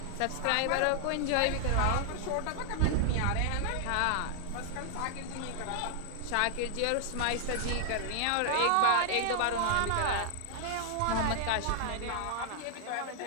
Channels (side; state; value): both; different; correlation -0.01